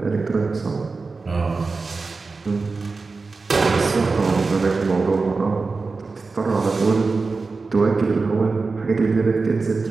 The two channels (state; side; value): quieter; left; 4.1 dB